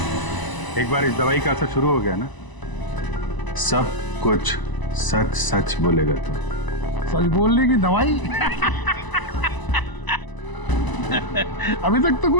एक बार इस दवाई का असर शुरू हो गया ना, सब कुछ सच सच बोलेगा तू? सच बोलने की दवाई? अभी तक तो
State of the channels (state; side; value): late; right; 1.0 ms